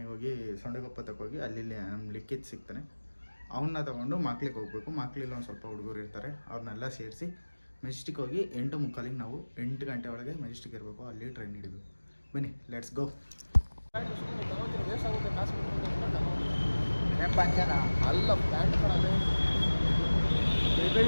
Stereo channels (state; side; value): inverted; both; correlation -1.00